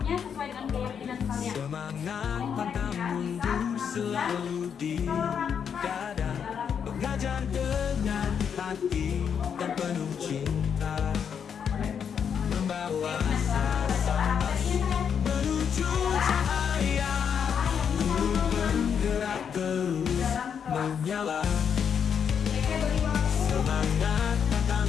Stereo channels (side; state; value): right; quieter; 7.5 dB